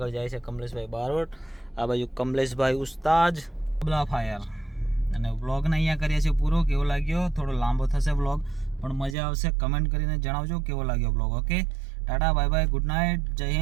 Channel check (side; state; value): left; drops out; at 9.2 s